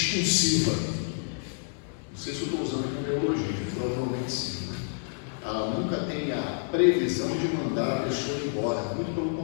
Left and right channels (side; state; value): right; silent; 59 dB below the other